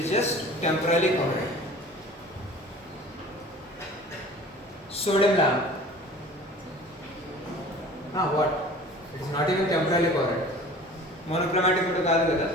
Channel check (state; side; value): normal; both; correlation 0.44